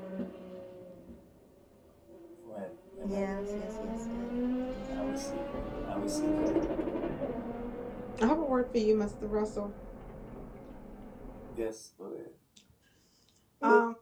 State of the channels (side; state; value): both; identical; correlation 1.00